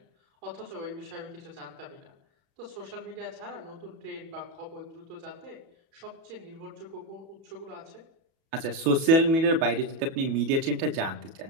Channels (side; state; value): left; late; 31 ms